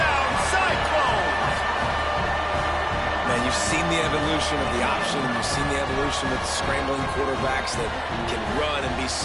Cyclones! Man, you've seen the evolution of the option. You've seen the evolution with scrambling quarterbacks that can run and be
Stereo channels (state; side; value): identical; both; correlation 1.00